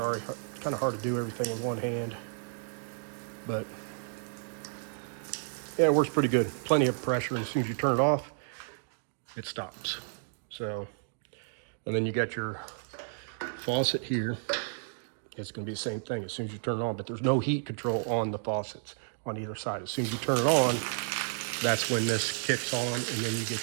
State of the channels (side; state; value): left; silent; digital silence